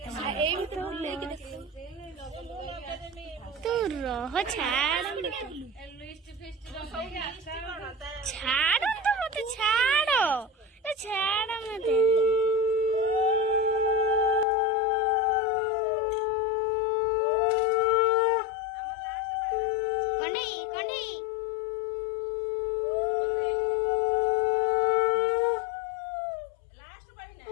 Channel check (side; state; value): right; drops out; at 14.5 s